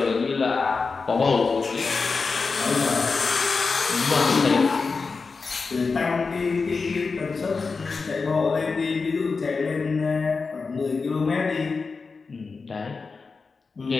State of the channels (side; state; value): right; quieter; 4.5 dB